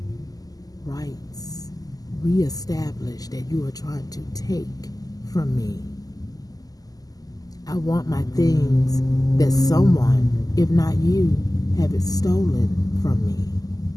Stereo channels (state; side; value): late; right; 0.18 ms